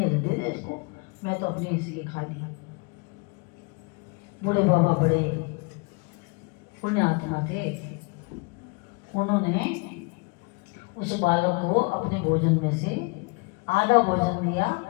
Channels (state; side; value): quieter; right; 29.6 dB